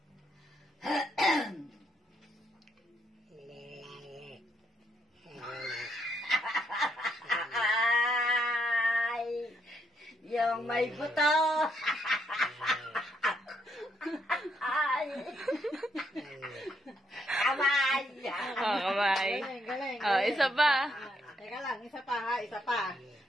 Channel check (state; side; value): normal; both; correlation 0.75